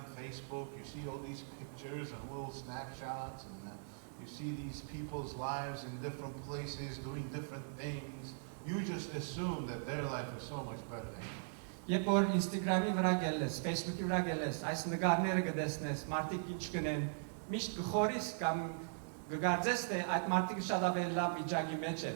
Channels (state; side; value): silent; left; digital silence